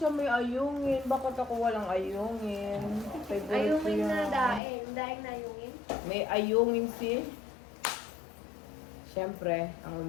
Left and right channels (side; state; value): right; drops out; at 4.6 s